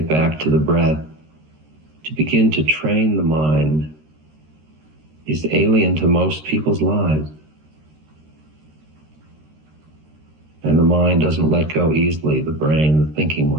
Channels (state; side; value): late; left; 13 ms